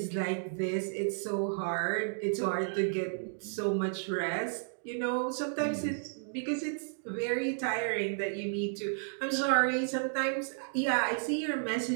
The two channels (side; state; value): left; silent; digital silence